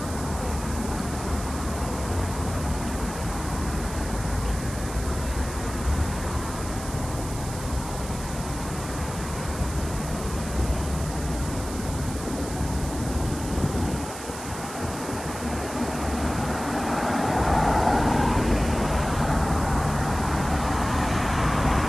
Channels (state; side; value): noise; right; hiss, 12 dB below the sound